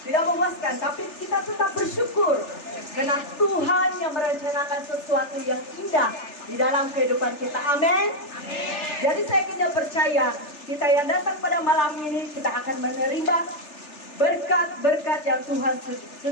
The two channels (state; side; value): late; right; 3.4 ms